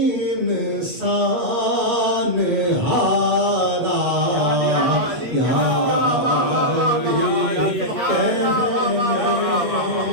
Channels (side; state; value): left; late; 8.1 ms